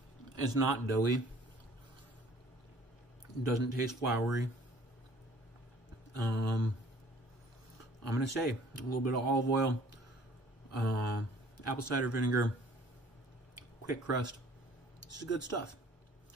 It's not doughy. It doesn't taste floury. I'm gonna say a little bit of olive oil, apple cider vinegar, quick crust. This is good stuff.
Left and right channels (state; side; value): normal; both; correlation 0.53